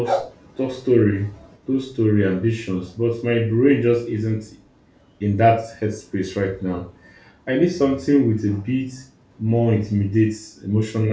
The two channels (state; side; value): identical; both; correlation 1.00